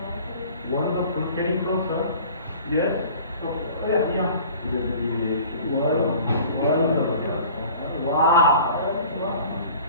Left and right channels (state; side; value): inverted; both; correlation -0.46